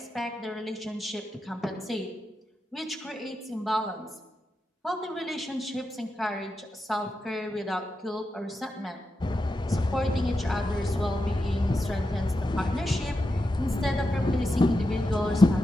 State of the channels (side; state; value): both; normal; correlation 0.88